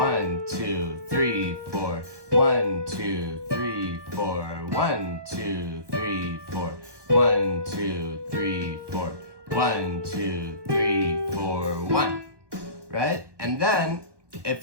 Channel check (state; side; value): late; left; 1.2 ms